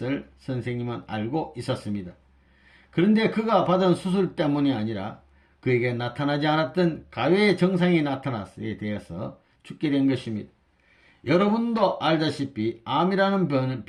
선생님은 알고 있었습니다. 그런데 그가 받은 수술 때문이 아니라 그에게 나타나지 않았던 가외의 증상이 나타났에 대해서 죽게 된 것입니다. 여러분도 알다시피 암이라는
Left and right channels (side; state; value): both; identical; correlation 1.00